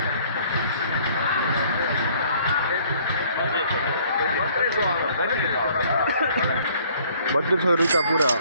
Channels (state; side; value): inverted; both; correlation -0.59